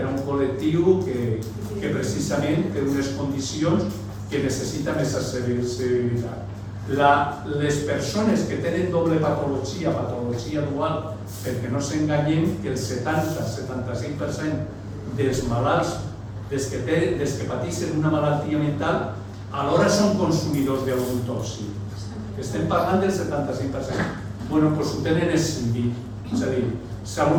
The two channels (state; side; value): identical; both; correlation 1.00